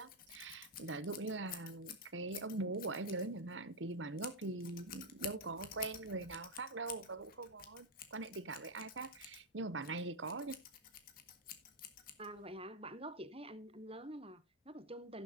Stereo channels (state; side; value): normal; both; correlation 0.01